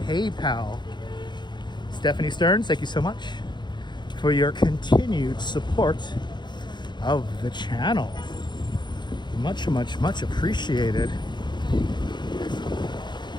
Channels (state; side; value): late; right; 0.21 ms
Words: PayPal. Stephanie Stearns, thank you so much for your continued support of the channel. Much, much, much appreciated.